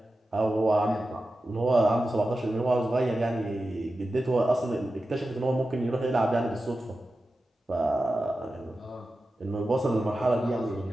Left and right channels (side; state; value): both; normal; correlation 0.92